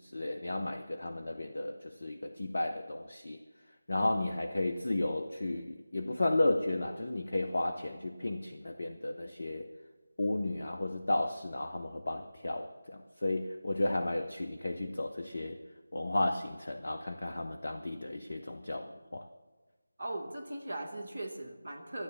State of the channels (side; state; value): both; inverted; correlation -0.97